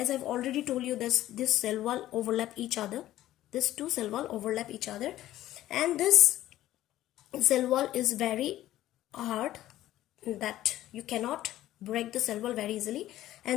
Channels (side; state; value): right; quieter; 14.2 dB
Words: I have already told you, this cell wall overlap each other. These two cell wall overlap each other, and this cell wall is very hard, that you cannot break the cell wall very easily,